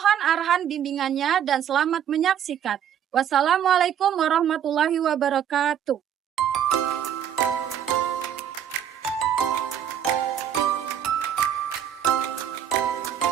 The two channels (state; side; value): quieter; left; 9.5 dB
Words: arahan bimbingannya dan selamat menyaksikan. Wassalamualaikum warahmatullahi wabarakatuh.